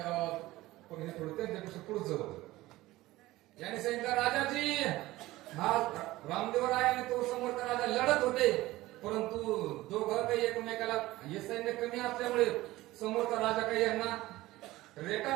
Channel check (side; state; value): left; quieter; 17.8 dB